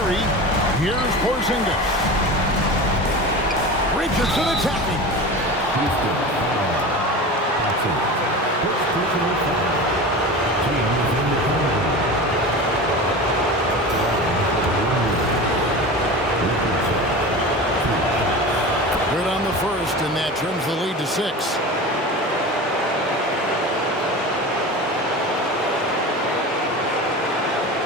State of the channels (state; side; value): normal; both; correlation 0.31